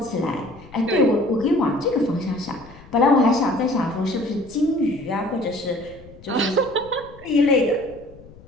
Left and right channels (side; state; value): left; noise; rumble, 21 dB below the sound